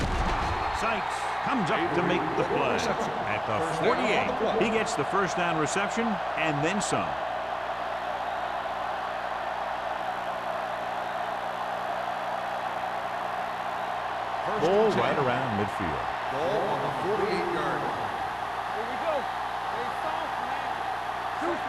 Sykes comes up to make the play. At the 48, he gets the first down reception and then some. Ball right around midfield. Ball on the 48-yard line.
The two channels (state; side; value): identical; both; correlation 1.00